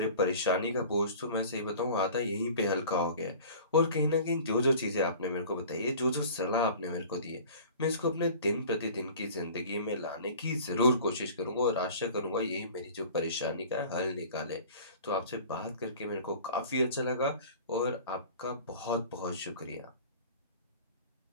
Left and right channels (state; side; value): inverted; both; correlation -0.43